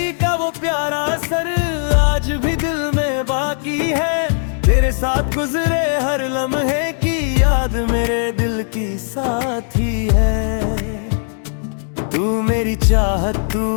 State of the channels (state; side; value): silent; right; digital silence